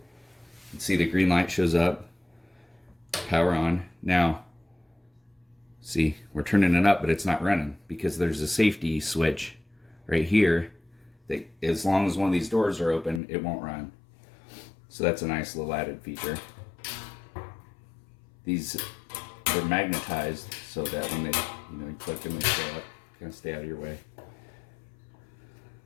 see the green light shows up, power on. Now, see, we're turning it up, but it's not running because there's a safety switch right here that as long as one of these doors are open, it won't run. So that's a nice little added feature. These are magnetized so that when they, you click them, they stay up, kind of stay out of your way.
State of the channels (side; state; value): right; drops out; at 13.2 s